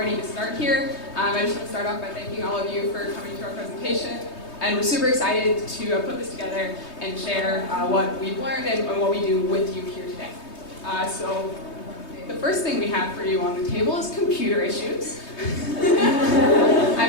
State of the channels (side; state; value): right; late; 3.2 ms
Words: to start here. I just want to start off by thanking all of you for coming to our presentation. And we're super excited to put this together and share what we've learned and what we do with you here today. So the first thing we have for you on the table is computer issues.